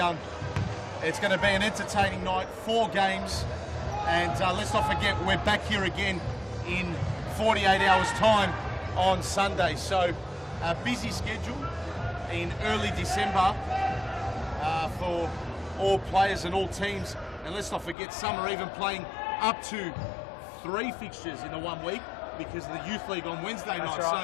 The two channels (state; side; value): drops out; right; at 17.9 s